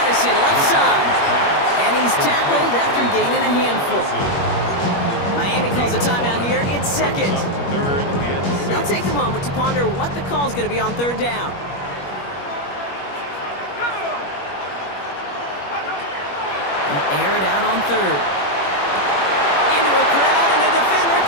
Addison, left side. And he's tackled after gaining a handful. Miami calls a timeout here. It's 2nd. 3rd and 6. They'll take a moment to ponder what the call's going to be on 3rd down. They'll air it out on 3rd. Into a crowd, and a defender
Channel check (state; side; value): late; right; 21 ms